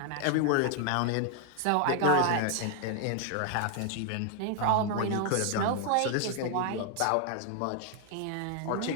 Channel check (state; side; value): different; both; correlation 0.00